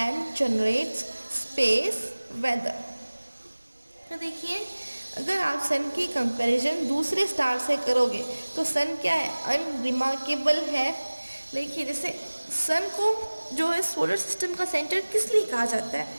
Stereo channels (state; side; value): inverted; both; correlation -1.00